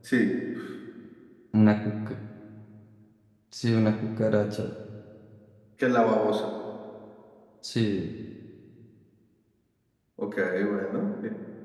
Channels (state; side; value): identical; both; correlation 1.00